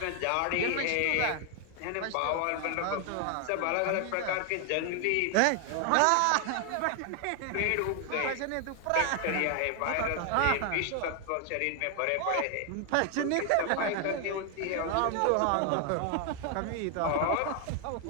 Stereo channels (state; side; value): different; both; correlation 0.00